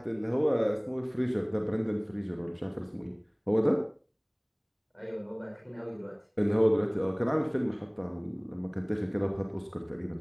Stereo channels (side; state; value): both; identical; correlation 1.00